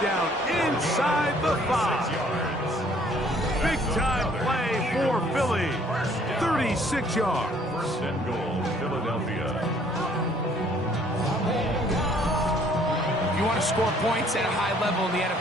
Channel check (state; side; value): normal; both; correlation 0.60